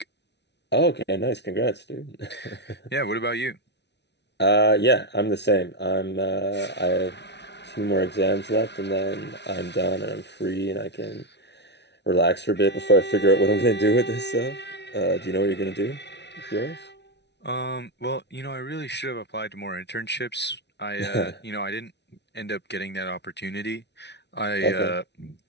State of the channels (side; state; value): right; late; 0.50 ms